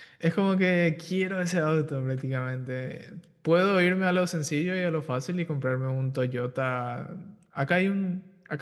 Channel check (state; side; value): identical; both; correlation 1.00